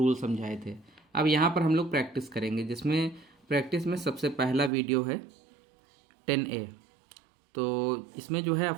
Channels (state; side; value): drops out; left; at 4.7 s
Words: समझाए थे। अब यहाँ पर हम लोग प्रैक्टिस करेंगे, जिसमें प्रैक्टिस में सबसे पहला वीडियो है 10A। तो इसमें जो है